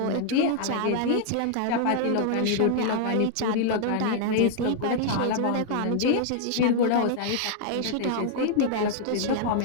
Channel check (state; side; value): different; both; correlation 0.00